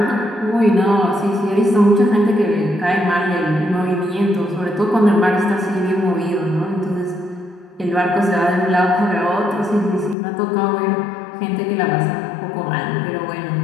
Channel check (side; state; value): right; drops out; at 10.2 s